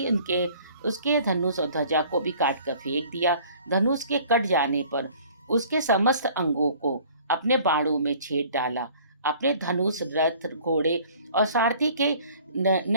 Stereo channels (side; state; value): both; inverted; correlation -0.52